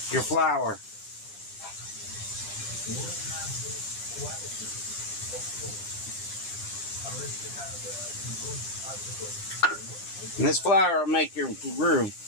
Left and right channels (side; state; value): right; late; 9.9 ms